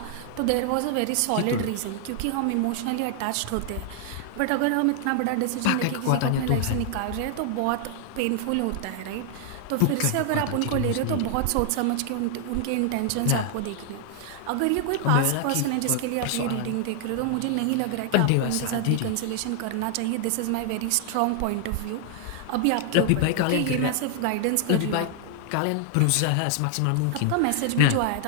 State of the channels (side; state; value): both; different; correlation 0.00